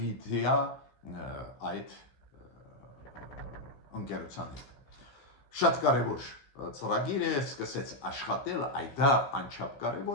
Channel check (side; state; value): right; late; 15 ms